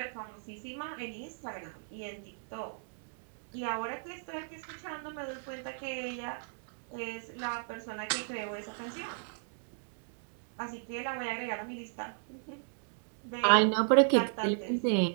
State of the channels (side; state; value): left; silent; digital silence